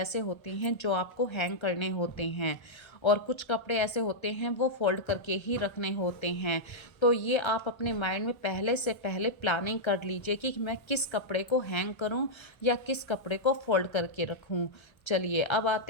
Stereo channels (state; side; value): late; right; 1.3 ms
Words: होते हैं जो आपको हैंग करने होते हैं, और कुछ कपड़े ऐसे होते हैं वो फोल्ड करके ही रखने होते हैं। तो ये आप अपने माइंड में पहले से पहले प्लानिंग कर लीजिए कि मैं किस कपड़े को हैंग करूं या किस कपड़े को फोल्ड करके रखूं। चलिए, अब